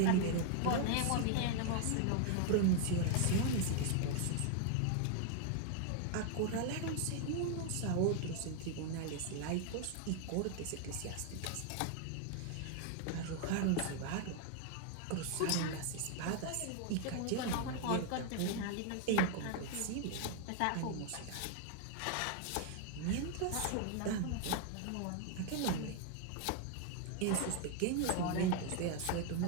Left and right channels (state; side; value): different; both; correlation 0.00